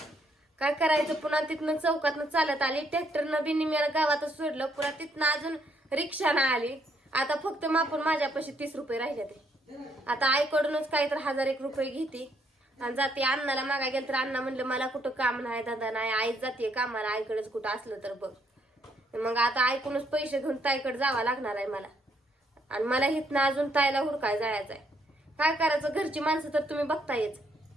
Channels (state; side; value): normal; both; correlation 0.71